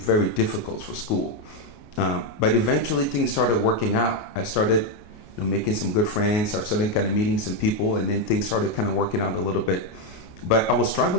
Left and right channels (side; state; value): right; late; 28 ms